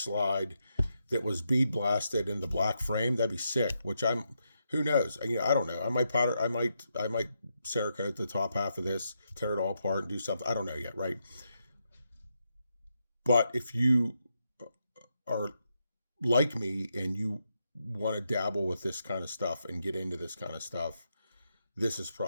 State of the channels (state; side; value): inverted; both; correlation -0.83